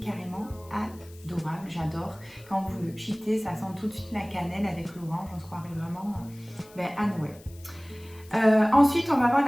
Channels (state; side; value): noise; left; hiss, 24 dB below the sound